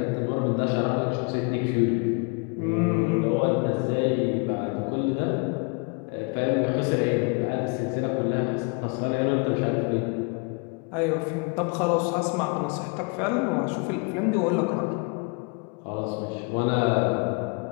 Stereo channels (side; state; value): right; quieter; 33.0 dB